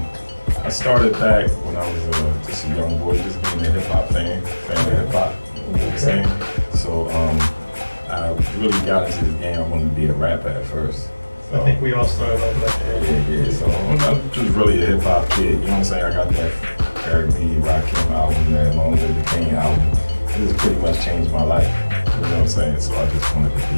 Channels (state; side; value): inverted; both; correlation -1.00